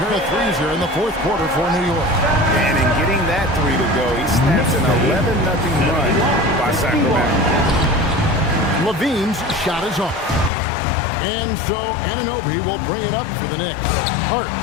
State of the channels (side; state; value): right; drops out; at 10.5 s